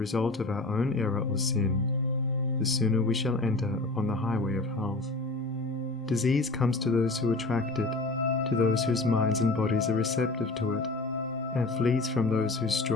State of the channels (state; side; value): quieter; right; 3.1 dB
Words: of our own error or sin, the sooner we shall enter upon the highway of health. Disease comes to those who attract it, to those whose minds and bodies are receptive to it, and flees from those whose